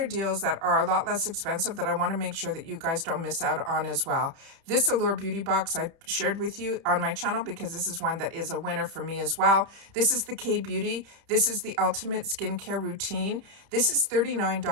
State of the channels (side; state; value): left; late; 30 ms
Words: deals that are a lot less expensive that I want to make sure that you guys don't miss out on as well. This Allure Beauty Box I shared with you on my channel because this is one that is a winner for me as well. This is the K-Beauty. This is the Ultimate Skincare Routine. This is